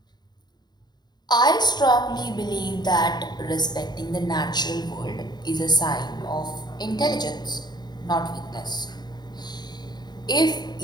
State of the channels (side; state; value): right; late; 0.20 ms